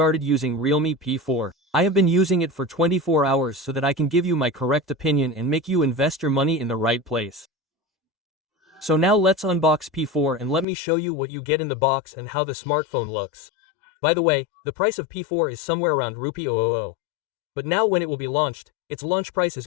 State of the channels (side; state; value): right; drops out; at 10.7 s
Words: using Realme P4. I have been using it for 24 hours so that I can give you my correct opinion and make you invest your money in the right place. So now let's unbox P4 and let me show you what you get in the box and how the smartphone looks. By the way, the price of P4 is somewhere around Rupee 000. But now when it will be launched, its launch price is